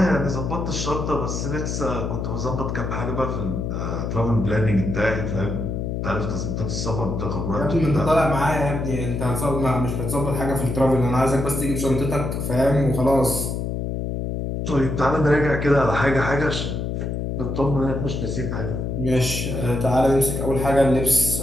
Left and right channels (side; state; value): left; noise; hum, 3 dB below the sound